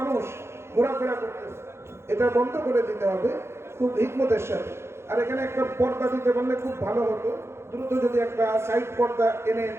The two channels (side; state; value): left; late; 0.12 ms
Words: ঘোরাফেরা করতেছে, এটা বন্ধ করে দিতে হবে খুব হিকমতের সাথে। আর এখানে একটা পর্দা দিতে পারলে খুব ভালো হতো, দ্রুত যদি একটা সাইড পর্দা এনে